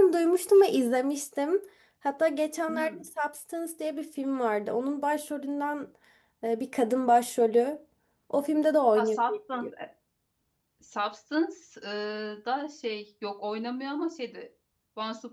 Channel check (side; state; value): both; identical; correlation 1.00